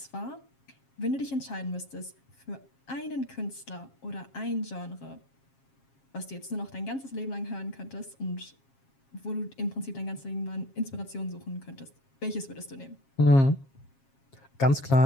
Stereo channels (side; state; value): right; late; 7.4 ms